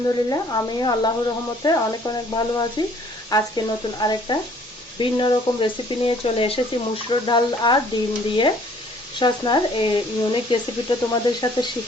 আমিও আল্লাহর রহমতে অনেক অনেক ভালো আছি। আজকে নতুন আরেকটা ভিন্ন রকম রেসিপি নিয়ে চলে এসেছি। মুসুর ডাল আর ডিম দিয়ে সসনার এই ইউনিক রেসিপিটা তোমাদের সাথে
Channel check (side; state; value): both; normal; correlation 0.58